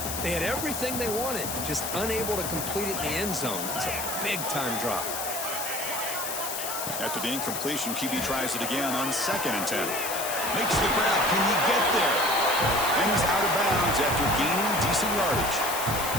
They had everything they wanted, just unable to complete it in the end zone. It's a big-time drop. After the incompletion, QB tries it again on 2nd and 10. Makes the grab. Can he get there? And he's out of bounds after gaining decent yardage.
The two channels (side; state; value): left; noise; hiss, 4 dB below the sound